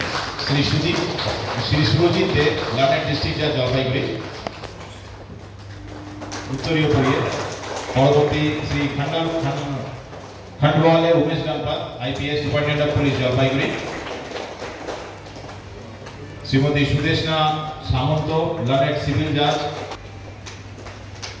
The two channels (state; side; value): identical; both; correlation 1.00